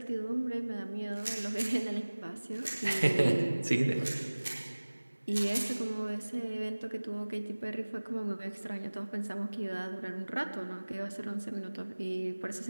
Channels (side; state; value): both; inverted; correlation -1.00